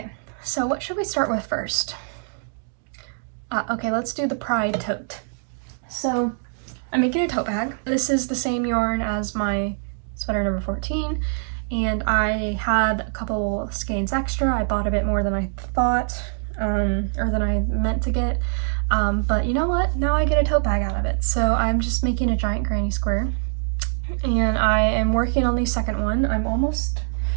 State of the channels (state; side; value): silent; left; digital silence